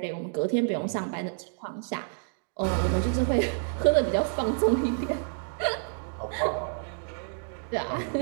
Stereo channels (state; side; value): silent; left; digital silence